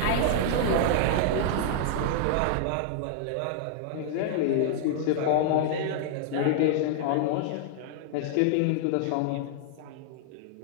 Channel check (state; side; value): different; both; correlation 0.00